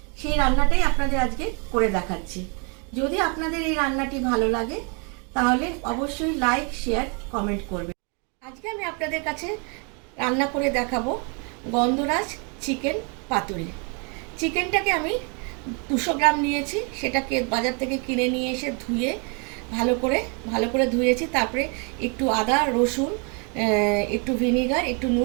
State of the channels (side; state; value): left; quieter; 35.8 dB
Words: সেই রান্নাটাই আপনাদের আজকে করে দেখাচ্ছি। যদি আপনাদের এই রান্নাটি ভালো লাগে তাহলে অবশ্যই লাইক, শেয়ার, কমেন্ট করবেন। আজকে আমি আপনাদের কাছে রান্না করে দেখাবো গন্ধরাজ চিকেন পাতুরি। চিকেনটাকে আমি 200 গ্রাম নিয়েছি। সেটাকে বাজার থেকে কিনে নিয়ে এসে ধুয়ে ভালো করে ধুয়েছি। তারপরে একটু আদা, রসুন, একটু ভিনিগার, একটু